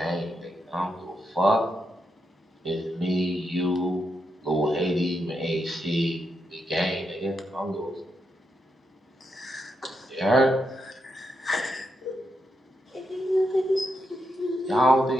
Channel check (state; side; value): normal; both; correlation 0.83